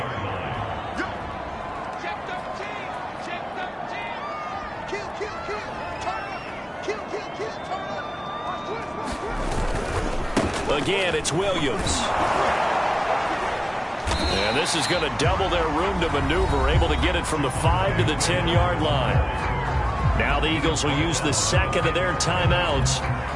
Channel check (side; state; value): both; identical; correlation 1.00